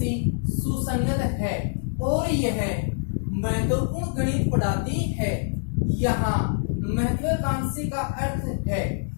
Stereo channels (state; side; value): silent; right; digital silence